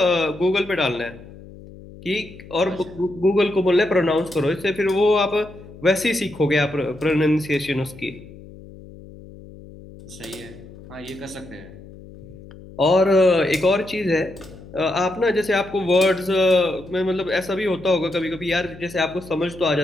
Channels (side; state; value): left; noise; hum, 18 dB below the sound